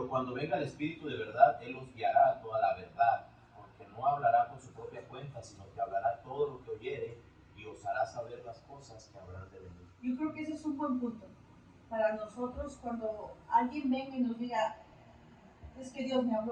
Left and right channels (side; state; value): both; identical; correlation 1.00